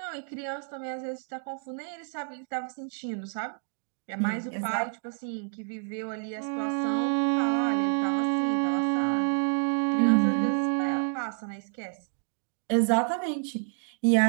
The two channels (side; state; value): left; silent; 59 dB below the other